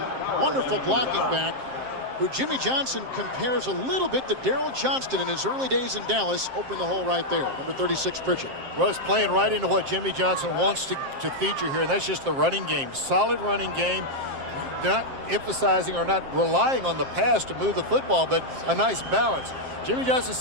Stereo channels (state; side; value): late; left; 7.6 ms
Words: wonderful blocking back, who Jimmy Johnson compares a little bit to Daryl Johnston in his early days in Dallas. Opened the hole right there. Number 36, Pritchett. Well, it's playing right into what Jimmy Johnson wants to feature here, and that's just the running game. Solid running game. Not emphasizing or not relying on the pass to move the football, but a nice balance. Jimmy Johnson